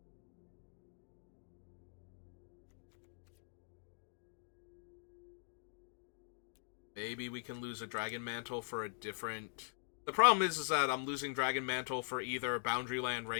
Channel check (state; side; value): silent; right; digital silence